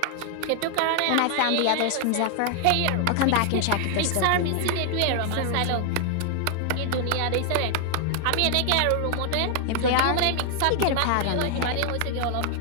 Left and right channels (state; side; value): different; both; correlation 0.00